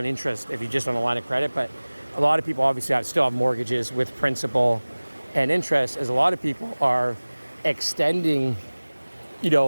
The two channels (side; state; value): both; inverted; correlation -1.00